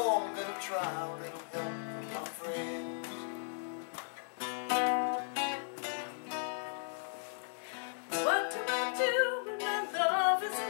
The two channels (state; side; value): silent; right; digital silence